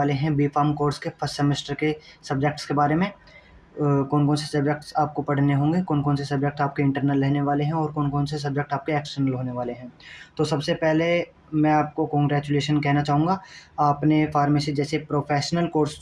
हैं बी फार्म कोर्स के फर्स्ट सेमेस्टर के सब्जेक्ट्स के बारे में। कौन कौन से सब्जेक्ट्स आपको पढ़ने होंगे, कौन कौन से सब्जेक्ट आपके इंटरनल रहने वाले हैं और कौन कौन से सब्जेक्ट आपके एक्सटर्नल होने वाले हैं। तो सबसे पहले मैं आपको कॉन्ग्रेचुलेशन कहना चाहूँगा। आपने फार्मेसी जैसे प्रोफेशनल कोर्स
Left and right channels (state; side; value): identical; both; correlation 1.00